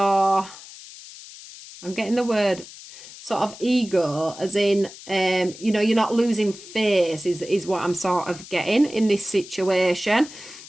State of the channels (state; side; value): noise; left; hiss, 16 dB below the sound